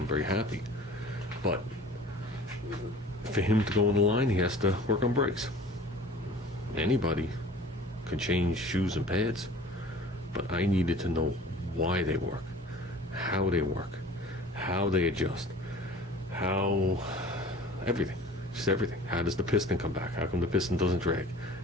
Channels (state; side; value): normal; both; correlation 0.45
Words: very happy. But for him to go on the line, he has to work on brakes. Anybody can change shoes and pads, but I needed to know why they work, how they adjust, how everything, just everything. How does the piston come back? How come the piston doesn't drag?